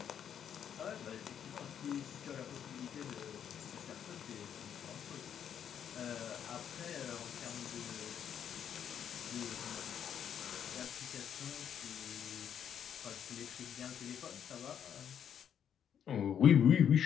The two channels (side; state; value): right; quieter; 8.8 dB